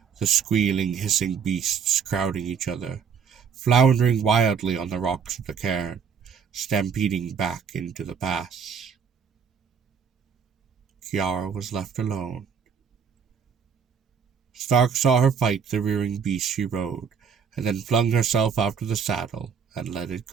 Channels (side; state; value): left; quieter; 6.7 dB